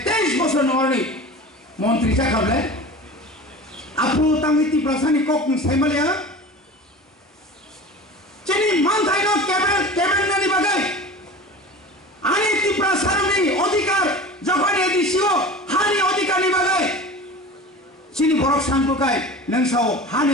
23 বছর নরনি মন্ত্রী চাকাবলে আপু তামিতি প্রশাসনিক কক সাইমালিয়া চিনি মানথাই ন ক্যাবিনেটনি বাগাই আনি ত্রিপুরা সারনি অধিকার যখন এদিছিও হানি অধিকারনি বাগাই চিনি বরক সানপুকাই নংসাও হানি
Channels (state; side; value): normal; both; correlation 0.35